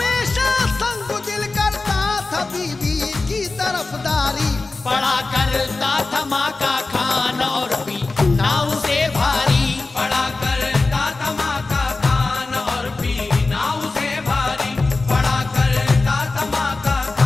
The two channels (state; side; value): quieter; right; 3.5 dB